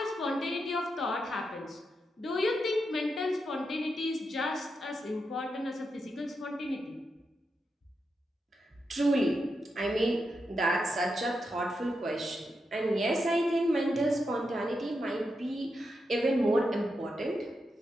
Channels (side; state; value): both; normal; correlation 0.86